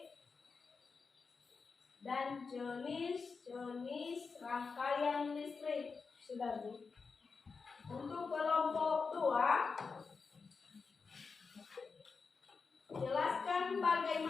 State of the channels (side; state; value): right; quieter; 4.9 dB